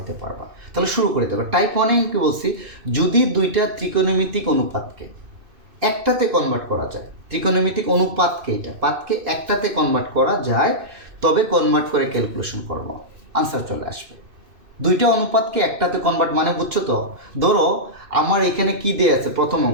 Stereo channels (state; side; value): late; left; 2.6 ms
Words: পারবা। তাহলে শুরু করে দেবো। টাইপ 1-এ কি বলছি, যদি দুইটা ত্রিকোণমিতিক অনুপাতকে একটাতে কনভার্ট করা যায়, ত্রিকোণমিতিক অনুপাতকে, এটা পাতকে একটাতে কনভার্ট করা যায়, তবে কনভার্ট করে ক্যালকুলেশন করবো, আনসার চলে আসবে। দুইটা অনুপাতকে একটাতে কনভার্ট মানে বুঝছো তো? ধরো আমার এখানে কি দিয়ে আছে, প্রথম